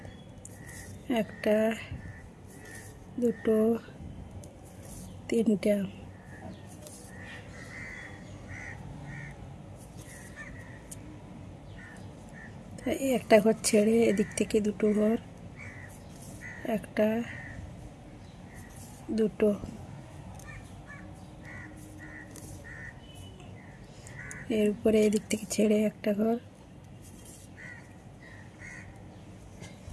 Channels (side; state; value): both; identical; correlation 1.00